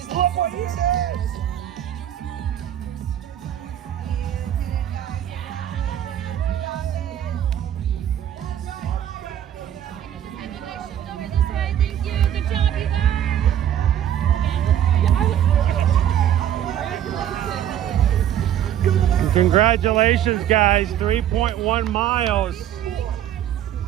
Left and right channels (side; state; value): left; quieter; 10.7 dB